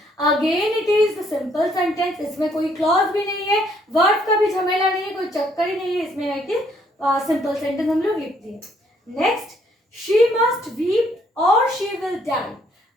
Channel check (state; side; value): normal; both; correlation 0.67